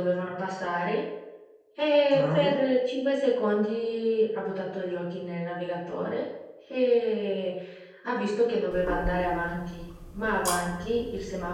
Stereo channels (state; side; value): identical; both; correlation 1.00